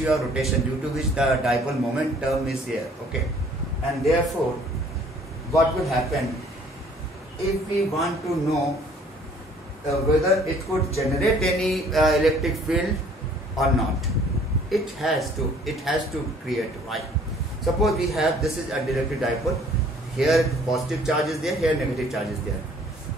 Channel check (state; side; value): normal; both; correlation 0.56